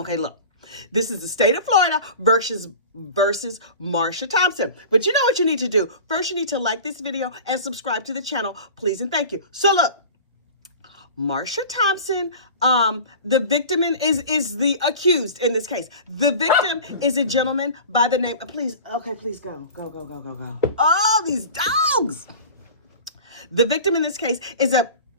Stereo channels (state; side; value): inverted; both; correlation -0.37